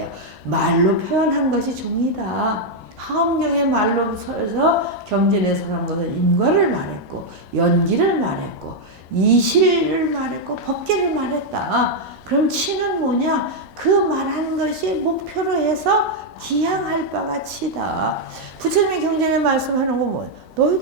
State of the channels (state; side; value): normal; both; correlation -0.01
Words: 말로 표현한 것이 종이다. 하엄경의 말로 서서 경전에 설한 것은 인과를 말했고 연기를 말했고 이실을 말했고 법계를 말했다. 그럼 치는 뭐냐? 그 말한 것이 목표로 해서 기향할 바가 치다. 부처님의 경전에 말씀하는 거 뭐예요?